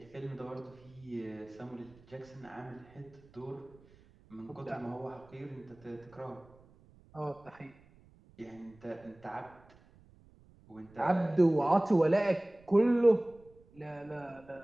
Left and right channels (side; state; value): right; noise; rumble, 26 dB below the sound